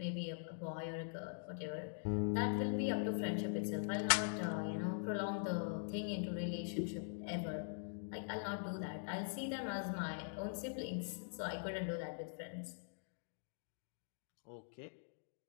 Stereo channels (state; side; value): silent; right; digital silence